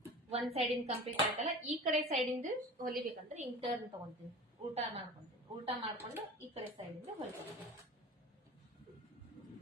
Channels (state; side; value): normal; both; correlation 0.36